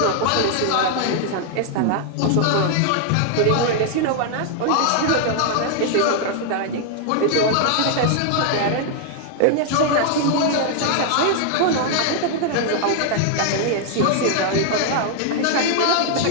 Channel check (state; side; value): different; both; correlation 0.00